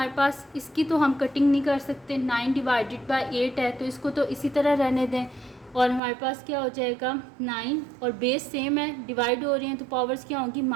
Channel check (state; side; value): drops out; left; at 6.0 s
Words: पास, इसकी तो हम कटिंग नहीं कर सकते, 9 डिवाइडेड बाय 8 है तो इसको तो इसी तरह रहने दें। और हमारे पास क्या हो जाएगा 9, और बेस सेम है, डिवाइड हो रही हैं तो पावर्स क्या होंगी,